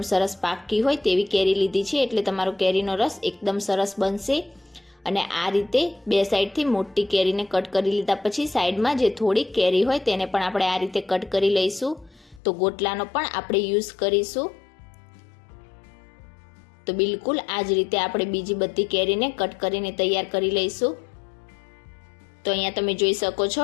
સરસ પાકી હોય તેવી કેરી લીધી છે એટલે તમારો કેરીનો રસ એકદમ સરસ બનશે। અને આ રીતે બે સાઈડથી મોટી કેરીને કટ કરી લીધા પછી સાઈડમાં જે થોડી કેરી હોય તેને પણ આપણે આ રીતે કટ કરી લઈશું। તો ગોટલાનો પણ આપણે યુઝ કરીશું। તો બિલકુલ આ જ રીતે આપણે બીજી બધી કેરીને કટ કરીને તૈયાર કરી લઈશું। તો અહીંયા તમે જોઈ શકો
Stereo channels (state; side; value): drops out; right; at 12.4 s